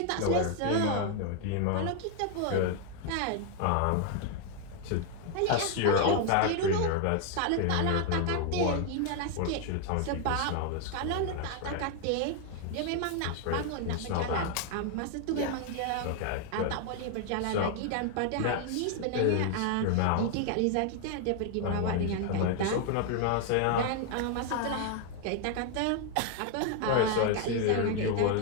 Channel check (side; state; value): both; different; correlation 0.01